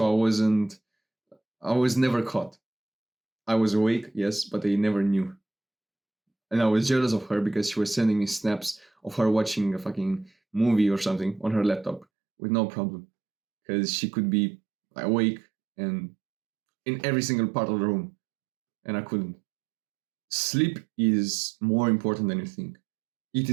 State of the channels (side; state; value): left; drops out; at 12.1 s